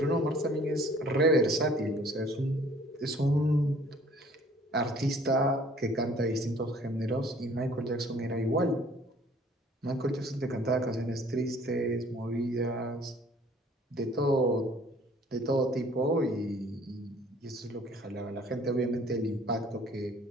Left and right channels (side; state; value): both; normal; correlation 0.55